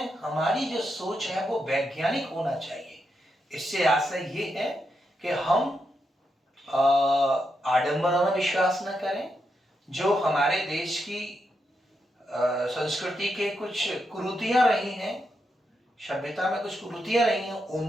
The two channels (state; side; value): normal; both; correlation 0.84